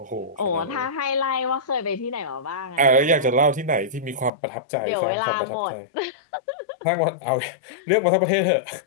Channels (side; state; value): right; drops out; at 4.3 s